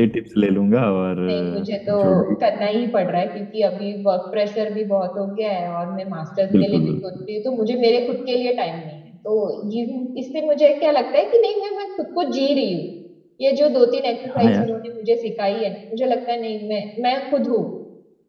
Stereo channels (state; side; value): identical; both; correlation 1.00